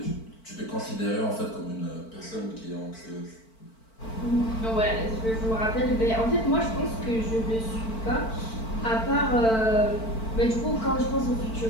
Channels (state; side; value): late; right; 4.5 ms